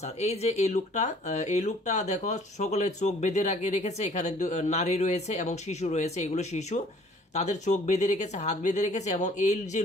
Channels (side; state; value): both; normal; correlation 0.55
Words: এই যে এই লোকটা দেখো সকলের চোখ বেঁধে রেখেছে, এখানে নারী রয়েছে এবং শিশু রয়েছে, এগুলো শিশু, তাদের চোখ বেঁধে রেখেছে, হাত বেঁধে রেখেছে, এবং এই যে